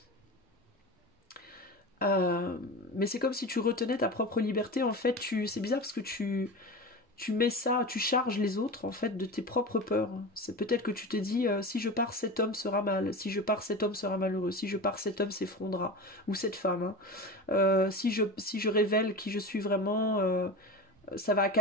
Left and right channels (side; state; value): both; normal; correlation 0.28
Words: Mais c'est comme si tu retenais ta propre liberté. En fait, c'est bizarre parce que tu mets ça, tu charges les autres en fait de tes propres peurs. C'est peut-être que tu te dis si je pars, cet homme sera mal, si je pars, cet homme sera malheureux, si je pars, cet homme s'effondrera, ou cette femme, hein. Si je révèle qui je suis vraiment, ça va